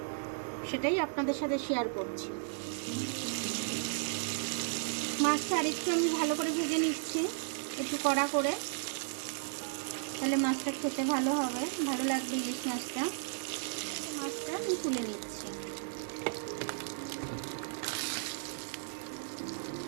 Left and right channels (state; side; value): silent; left; 55 dB below the other